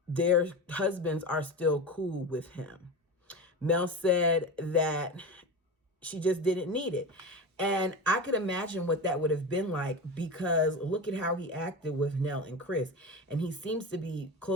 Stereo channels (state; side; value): normal; both; correlation 0.25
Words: their husbands are still cool with him. Mel said that she just didn't need it. And I could imagine what that would have been like, because look at how he acted with Nell and Chris. And he seems to be